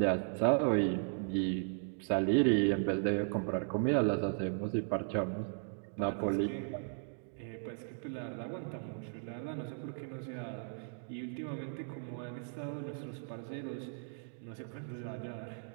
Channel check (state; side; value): silent; left; digital silence